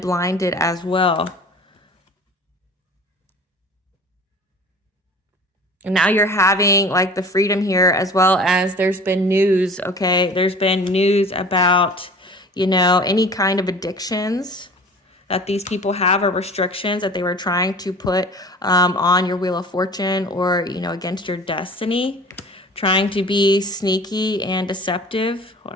blinded as well. And now you're having like the freedom here, as well as there's been news, okay? There's been news about, any kind of addictions that these people have, or restrictions that they were trying to put on your Wheel of Fortune, or, against your destiny, trying to be sneaky and deceptive. Hold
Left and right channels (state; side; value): normal; both; correlation 0.43